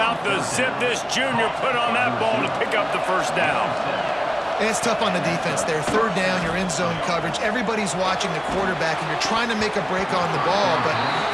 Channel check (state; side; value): identical; both; correlation 1.00